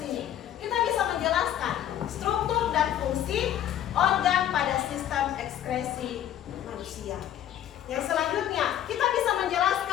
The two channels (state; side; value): quieter; right; 11.2 dB